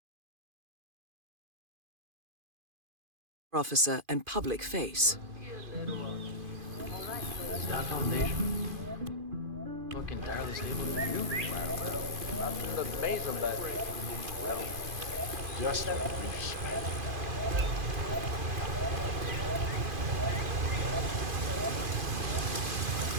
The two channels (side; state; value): left; late; 2.5 ms